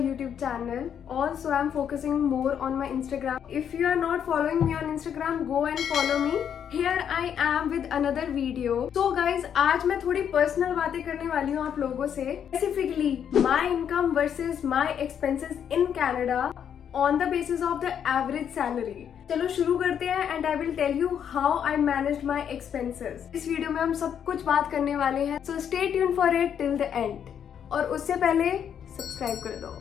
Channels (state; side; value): quieter; right; 8.5 dB